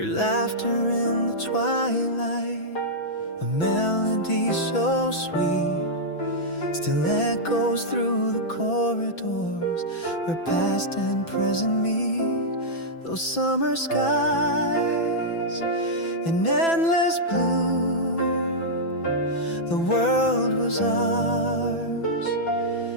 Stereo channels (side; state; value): right; late; 6.0 ms